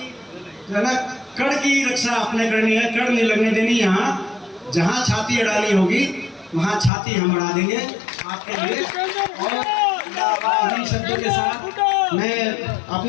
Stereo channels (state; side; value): drops out; right; at 6.9 s